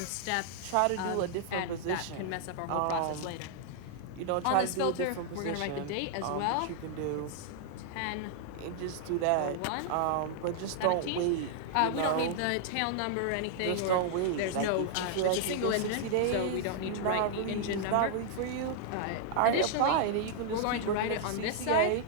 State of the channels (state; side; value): different; both; correlation -0.01